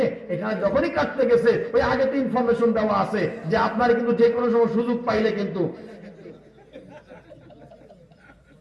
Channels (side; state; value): both; identical; correlation 1.00